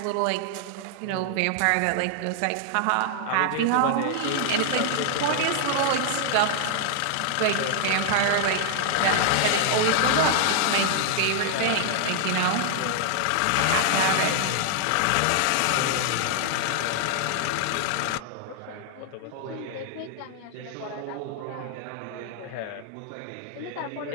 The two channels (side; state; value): both; different; correlation -0.01